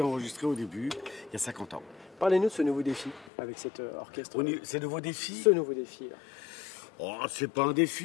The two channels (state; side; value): drops out; right; at 3.2 s